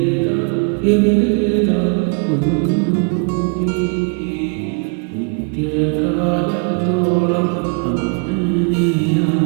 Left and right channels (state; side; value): quieter; left; 35.9 dB